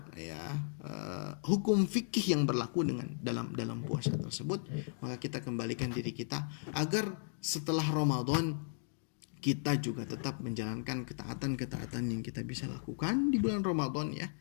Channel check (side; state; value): right; silent; digital silence